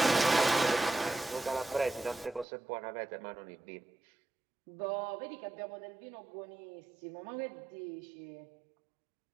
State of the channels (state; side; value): drops out; left; at 2.5 s